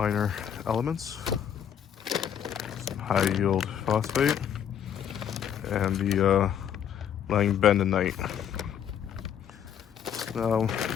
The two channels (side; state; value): right; quieter; 9.0 dB